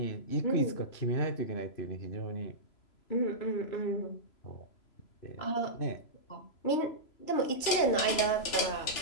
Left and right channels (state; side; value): late; right; 3.0 ms